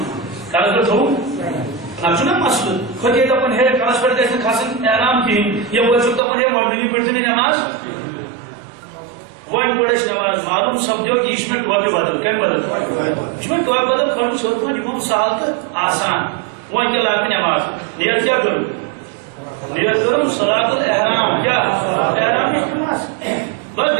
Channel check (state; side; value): drops out; left; at 6.2 s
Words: کلس پٮ۪ٹھ تھوٚو نتہٕ چھُنہ مسلہٕ کھۄتہِ دپان ہے کلس پٮ۪ٹھ گژھِ نہٕ کھسٕنۍ احرام کِہیٖنۍ یپٲرۍ چھُکھ دپان ہے آرڈنری پٔرۍزِ نہٕ نماز وۄنۍ پٔر اَسہِ نماز معلوم سپدیو کہ یہِ چھُ مےٚ ٹوپہِ بدل کمہِ بدل یہِ چھُ مےٚ ٹوپہِ بدل کھٲلمٕژ ہیوٚر کُن یہِ گوٚو سہل تہٕ آسان وۄنۍ کیٛاہ لاگہِ نماز نیت کیٛاہ کٔرٕم نیت کٔرٕم صلاۃ الاحرام کیٛاہ احرام نِش نماز بس